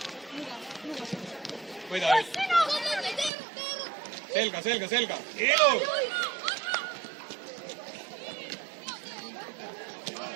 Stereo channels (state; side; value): drops out; left; at 3.3 s